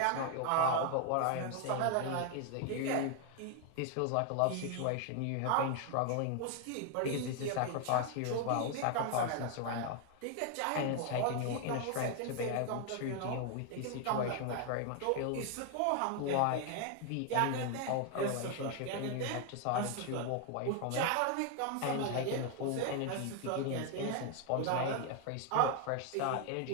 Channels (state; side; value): different; both; correlation 0.01